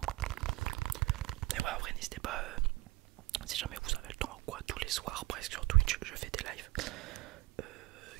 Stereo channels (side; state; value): left; quieter; 20.1 dB